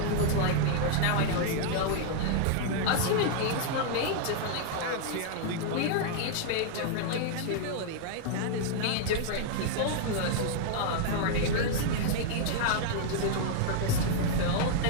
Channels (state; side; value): different; both; correlation -0.01